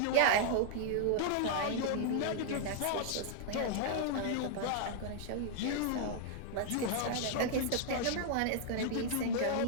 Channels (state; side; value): different; both; correlation -0.01